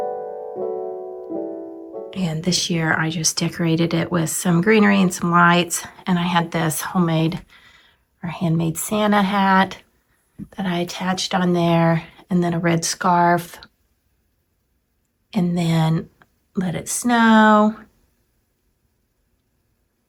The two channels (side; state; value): both; identical; correlation 1.00